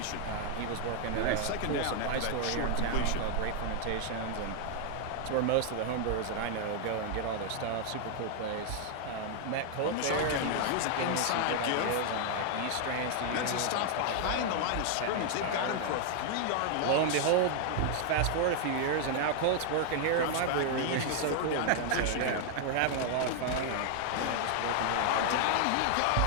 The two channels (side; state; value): both; different; correlation 0.00